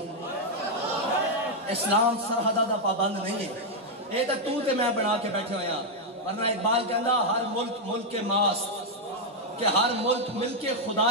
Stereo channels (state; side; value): normal; both; correlation -0.01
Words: اسلام سرحدہ دا پابند نہیں ہے. اے تو تے میں بنا کے بیٹھے ہوئے ہیں. ورنہ اقبال کہندا ہر ملک ملک کے ماس, کہ ہر ملک مل کے